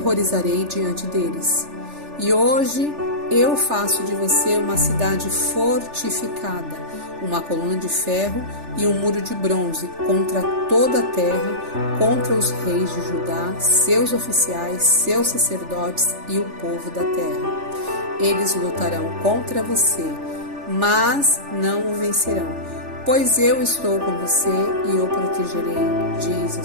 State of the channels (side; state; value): left; late; 3.4 ms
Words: diante deles. E hoje eu faço de você uma cidade fortificada, uma coluna de ferro e um muro de bronze contra toda a terra, contra os reis de Judá, seus oficiais, seus sacerdotes e o povo da terra. Eles lutarão contra você, mas não o vencerão, pois eu estou com você e o protegerei, diz o